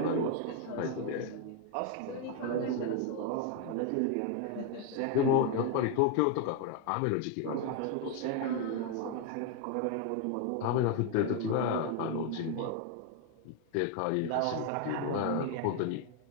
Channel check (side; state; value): both; different; correlation 0.01